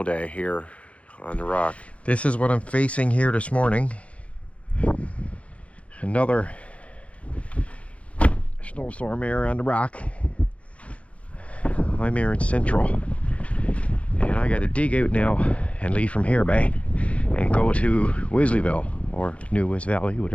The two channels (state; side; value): late; right; 0.063 ms